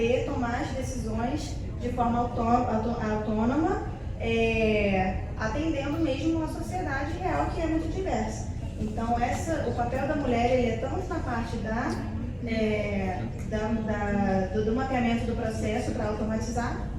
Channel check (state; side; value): identical; both; correlation 1.00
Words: tomar as decisões de forma autônoma, atendendo mesmo uma sociedade real que é muito diversa. Então, o papel da mulher ele é tanto na parte do mapeamento do processo para automatizar,